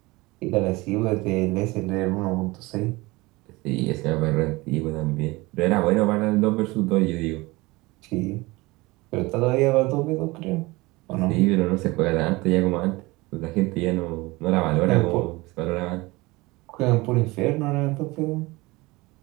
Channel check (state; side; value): quieter; left; 22.3 dB